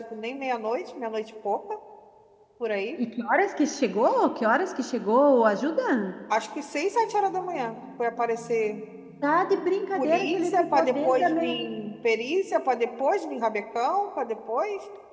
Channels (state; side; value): identical; both; correlation 1.00